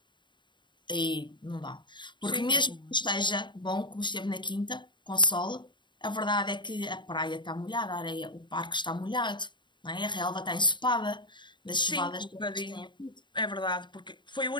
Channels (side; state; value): right; late; 0.22 ms